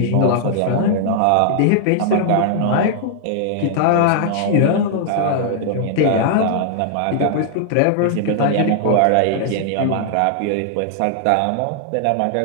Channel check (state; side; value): different; both; correlation -0.01